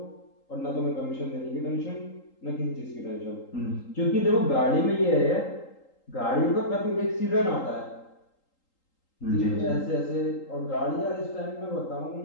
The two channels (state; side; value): late; right; 3.8 ms